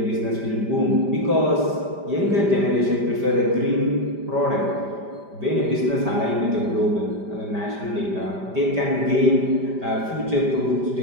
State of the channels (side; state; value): left; late; 5.0 ms